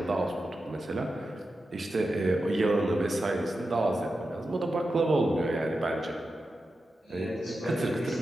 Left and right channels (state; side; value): normal; both; correlation 0.90